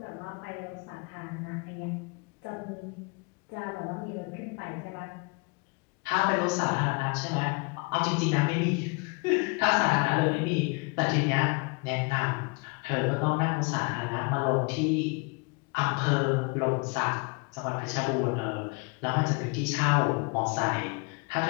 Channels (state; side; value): quieter; right; 30.2 dB